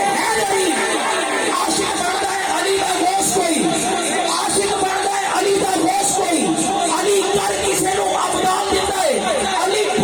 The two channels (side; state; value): both; identical; correlation 1.00